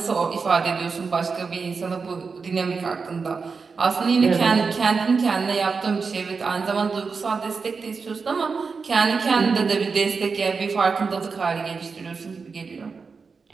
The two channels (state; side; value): quieter; left; 5.0 dB